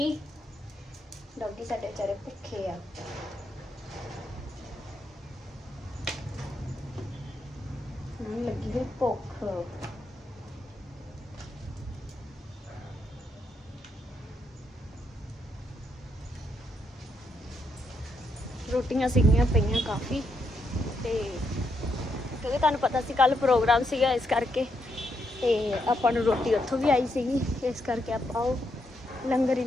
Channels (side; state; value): both; normal; correlation 0.79